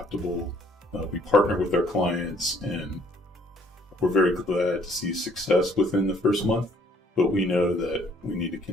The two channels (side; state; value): both; normal; correlation 0.62